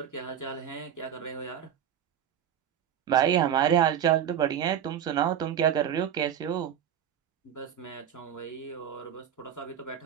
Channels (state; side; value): quieter; left; 9.4 dB